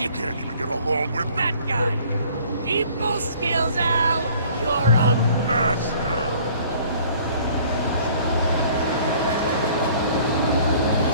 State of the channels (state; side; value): inverted; both; correlation -0.54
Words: can't even get along with that guy. People skills, Al! You're a master!